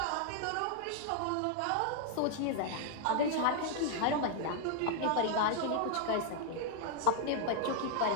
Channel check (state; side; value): different; both; correlation 0.00